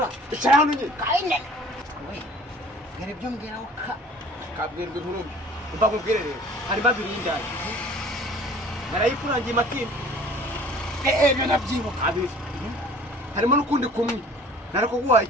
icara hano nyine kayine ngere byo mbwira kabwirwa inkuru umva nkubwire rero harimo abiri y'indaya barayikurangiye matimba ibyo nabyibuka abiri harimo n'ukundi kumwe narakuguha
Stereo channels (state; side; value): normal; both; correlation 0.49